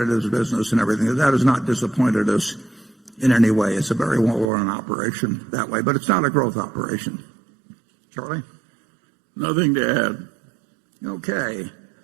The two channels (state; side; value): drops out; left; at 4.5 s